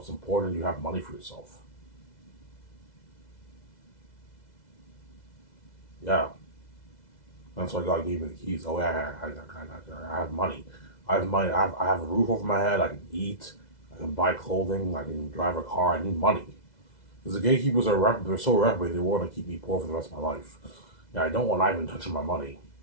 It's important you have money for yourself. Yeah. That's why God gave me the keys. Oh, yeah, I have money. I have money. I have a roof over my head. I can eat. I can buy clothing. I can drive a car. I need money. Because the gatekeepers they're so reprobate, they want to keep me poor for the rest of my life. Yeah, I don't want Ivan touching my money.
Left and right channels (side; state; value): right; late; 2.0 ms